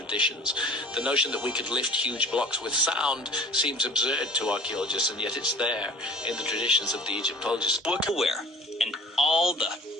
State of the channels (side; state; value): both; normal; correlation 0.46